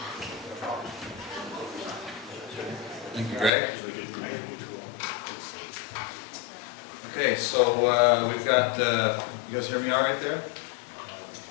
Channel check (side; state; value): right; drops out; at 3.5 s